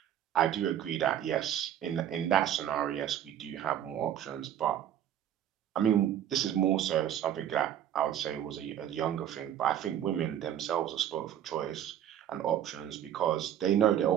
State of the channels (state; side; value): quieter; left; 10.4 dB